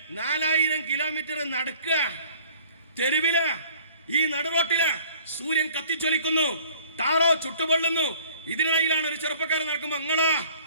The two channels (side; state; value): both; inverted; correlation -0.52